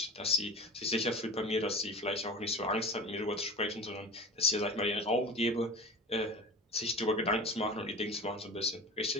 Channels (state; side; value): normal; both; correlation 0.34